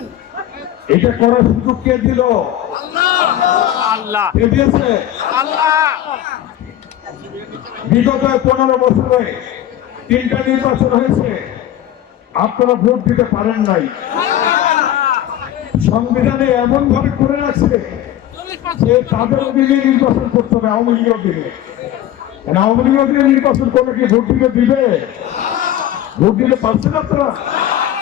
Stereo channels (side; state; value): right; quieter; 12.2 dB